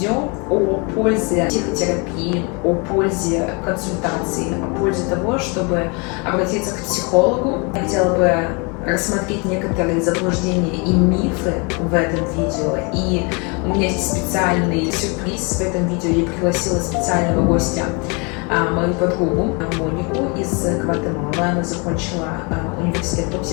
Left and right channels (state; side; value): quieter; right; 31.6 dB